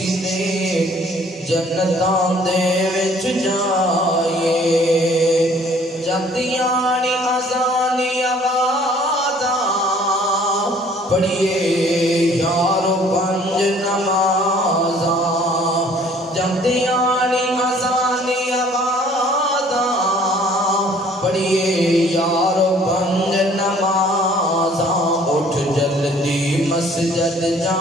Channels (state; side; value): normal; both; correlation 0.56